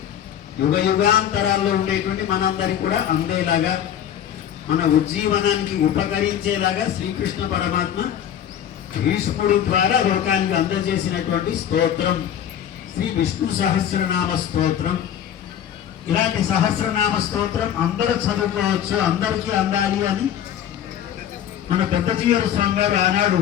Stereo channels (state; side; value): quieter; right; 10.0 dB